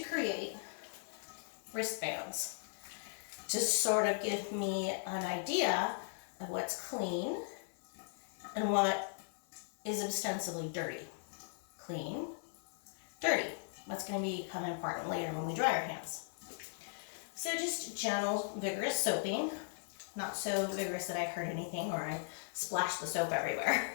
create wristbands to sort of give me an idea of what's clean and what is ostensibly dirty. Clean, dirty. That's going to become important later when we dry our hands. So just gentle, vigorous soaping. Not so vigorous that I hurt anything or I splash the soap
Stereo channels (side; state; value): right; silent; 52 dB below the other